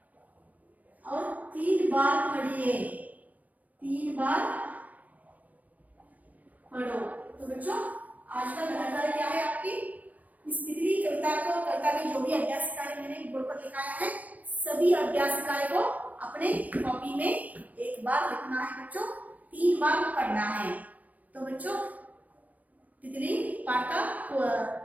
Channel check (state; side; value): late; left; 0.078 ms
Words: और 3 बार पढ़िए, 3 बार पढ़ो। तो बच्चों आज का गृह कार्य क्या है आपकी? इस तितली कविता के जो भी अभ्यास कार्य मैंने बोर्ड पर लिखाया है, सभी अभ्यास कार्य को अपने कॉपी में एक बार लिखना है बच्चों, 3 बार पढ़ना है। तो बच्चों तितली पाठ का